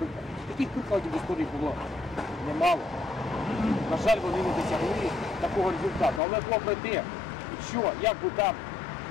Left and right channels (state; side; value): drops out; right; at 6.2 s